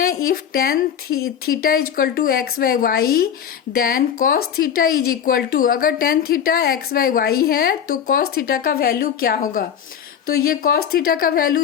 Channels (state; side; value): quieter; right; 8.6 dB